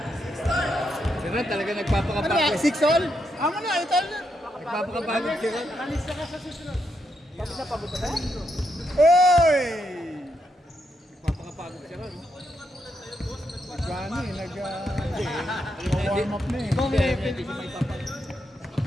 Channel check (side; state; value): both; normal; correlation 0.81